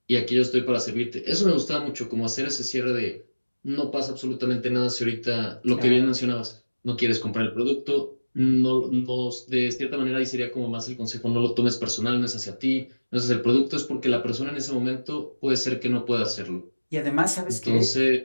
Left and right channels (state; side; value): inverted; both; correlation -1.00